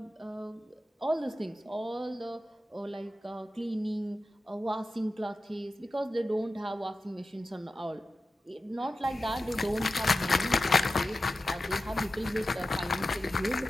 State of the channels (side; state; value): both; normal; correlation 0.92